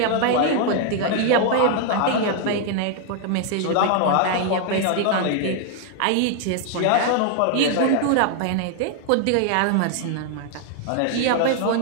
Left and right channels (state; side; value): different; both; correlation 0.00